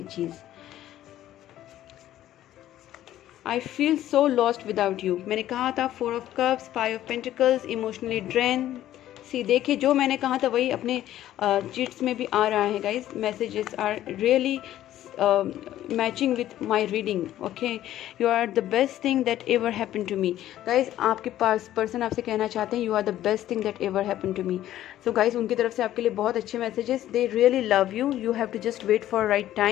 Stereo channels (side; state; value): right; quieter; 13.0 dB